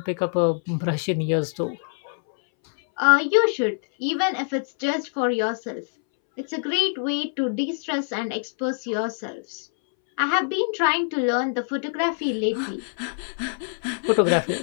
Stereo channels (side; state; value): right; silent; 62 dB below the other